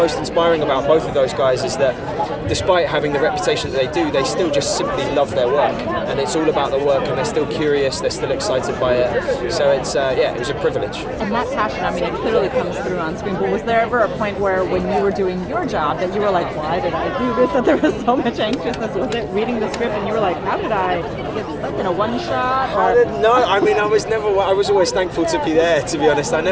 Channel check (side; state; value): both; identical; correlation 1.00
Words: inspiring about both of those guys is that despite having the reputation that they do, they still just simply love their work, and it's all about the work, and they're still curious, they're still excited by it. So it's it was a privilege. And that passion, I mean, it clearly comes through on screen. But was there ever a point where, when you were doing your job, that you were like, "Why did I do this?" That there was so much anxiousness? Was it reading the script and you were like, "How did I get stuck in a one shot?" No, I mean, I was always thankful to be there. To be honest, I